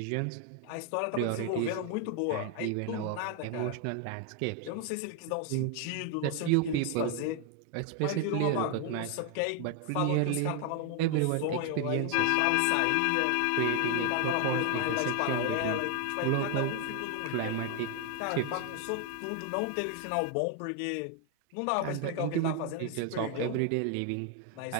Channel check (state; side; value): different; both; correlation 0.01